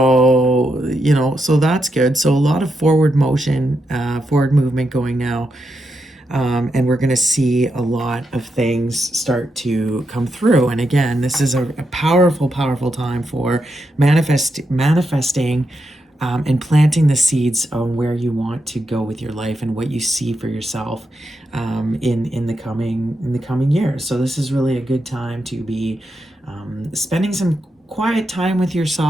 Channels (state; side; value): normal; both; correlation 0.84